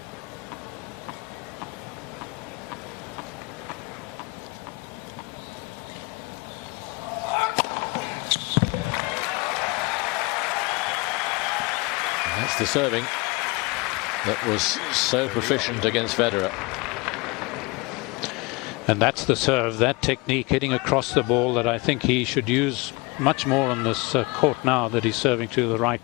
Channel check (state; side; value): quieter; right; 25.3 dB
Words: That's the serving that was so proficient against Federer. And that's the serve, that technique hitting across the ball that I think he should use much more on this court now that he's serving to the